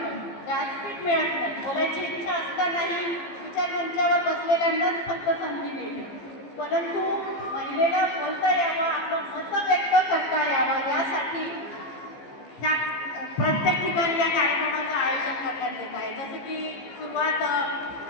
व्यासपीठ मिळत नाही, बोलायची इच्छा असतानाही विचारमंचावर बसलेल्यांनाच फक्त संधी मिळते. परंतु महिलेला बोलता यावं, आपलं मत व्यक्त करता यावं यासाठी ह्या प्रत्येक ठिकाणी या कार्यक्रमाचं आयोजन करण्यात येत आहे. जसं की सुरुवात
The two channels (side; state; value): right; late; 15 ms